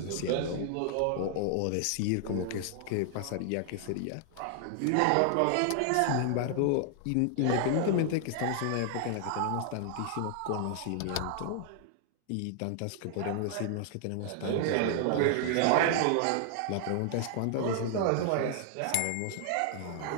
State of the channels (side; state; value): both; different; correlation 0.00